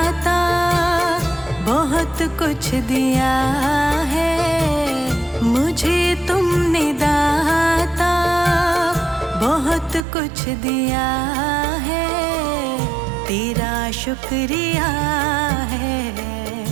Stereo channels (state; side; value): drops out; left; at 10.1 s